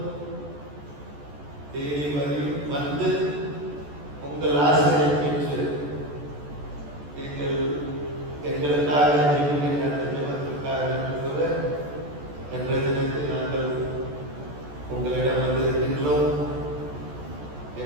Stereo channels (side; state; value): left; late; 14 ms